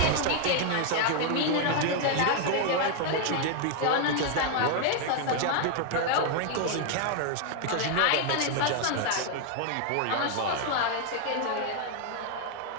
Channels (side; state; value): both; different; correlation 0.00